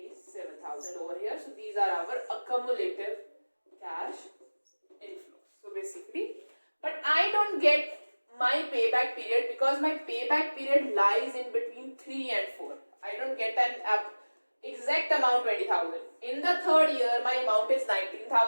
over here. So these are our accumulative cash inflows. So basically, but I don't get my payback period because my payback period lies in between 3 and 4. I don't get an exact amount 20,000. In the third year, my amount is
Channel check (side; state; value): both; inverted; correlation -1.00